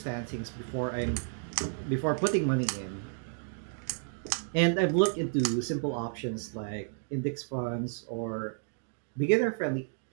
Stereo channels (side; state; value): left; silent; digital silence